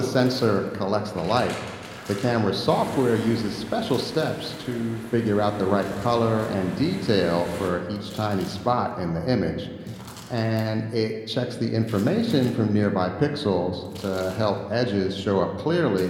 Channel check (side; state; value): both; identical; correlation 1.00